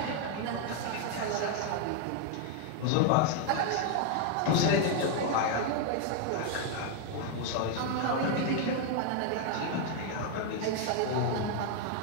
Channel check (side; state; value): both; different; correlation 0.01